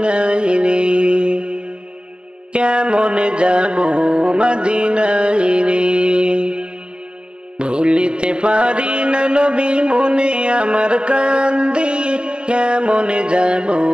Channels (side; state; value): left; late; 0.052 ms